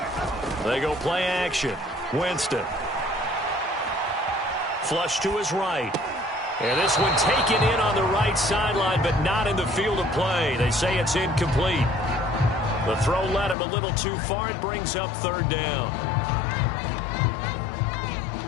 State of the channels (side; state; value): right; drops out; at 13.6 s